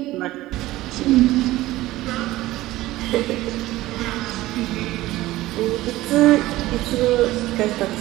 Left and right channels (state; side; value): quieter; left; 17.0 dB